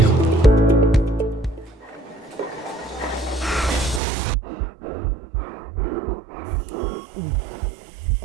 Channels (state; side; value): drops out; left; at 4.0 s